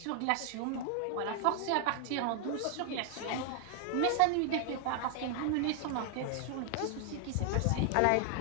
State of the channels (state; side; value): different; both; correlation 0.00